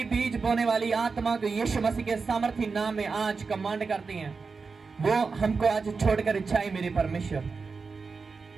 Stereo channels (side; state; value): left; quieter; 4.7 dB